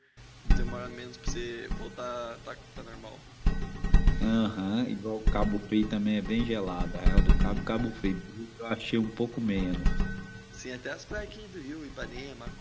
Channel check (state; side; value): identical; both; correlation 1.00